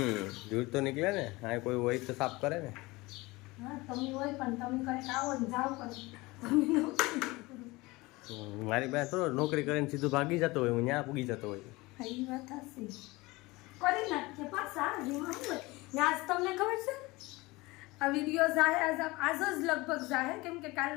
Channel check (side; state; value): right; quieter; 22.1 dB